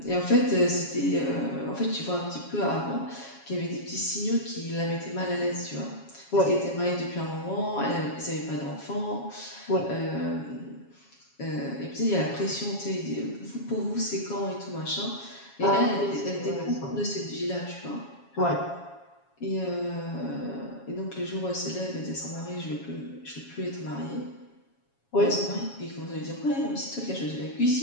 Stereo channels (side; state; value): right; late; 7.2 ms